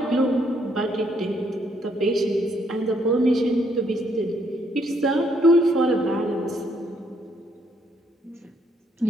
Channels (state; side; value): normal; both; correlation 0.70